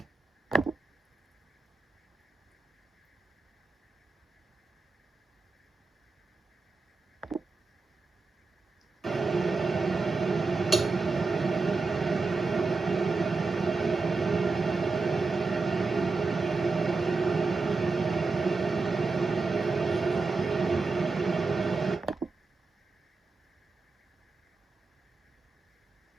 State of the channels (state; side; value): quieter; left; 3.9 dB